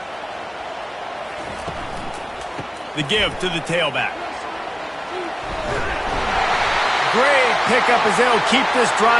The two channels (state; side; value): identical; both; correlation 1.00